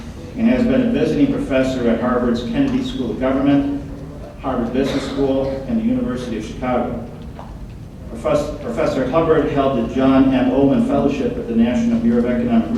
and has been a visiting professor at Harvard's Kennedy School of Government, Harvard Business School, and the University of Chicago. Professor Hubbard held the John M. Ullman Fellowship at the National Bureau of Economic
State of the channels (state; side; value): identical; both; correlation 1.00